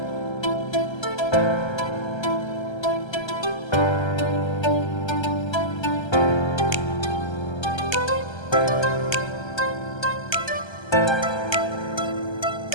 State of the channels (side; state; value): right; late; 1.3 ms